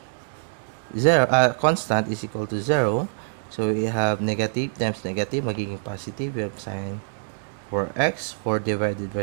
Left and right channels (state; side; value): silent; left; digital silence